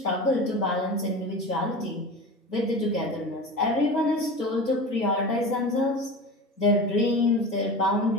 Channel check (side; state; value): both; normal; correlation 0.30